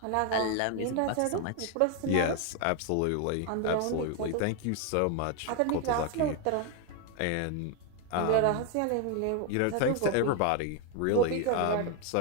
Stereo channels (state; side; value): different; both; correlation 0.01